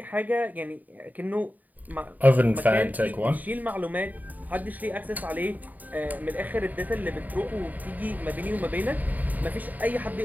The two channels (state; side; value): late; left; 0.081 ms